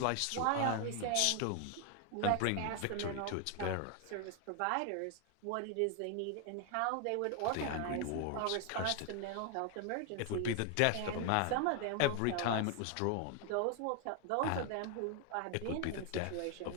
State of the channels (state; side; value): different; both; correlation 0.01